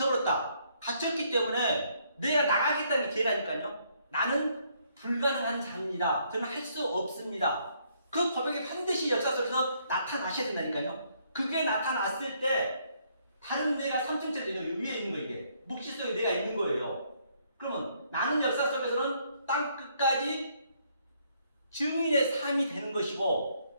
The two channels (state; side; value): inverted; both; correlation -0.69